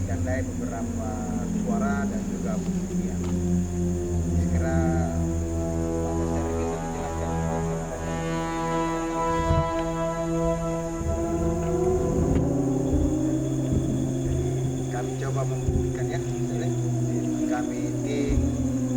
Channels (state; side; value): identical; both; correlation 1.00